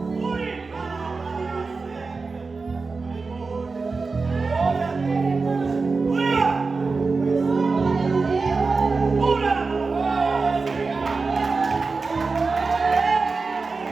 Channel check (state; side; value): quieter; left; 4.2 dB